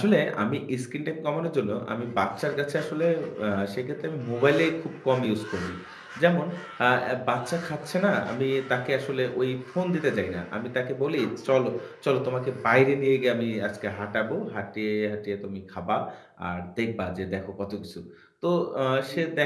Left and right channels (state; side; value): identical; both; correlation 1.00